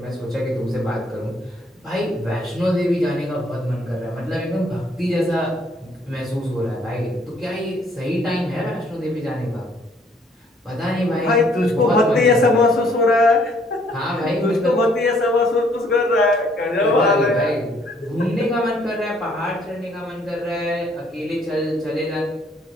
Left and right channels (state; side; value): normal; both; correlation 0.64